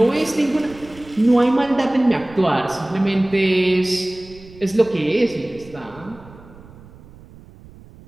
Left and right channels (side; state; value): right; noise; rumble, 21 dB below the sound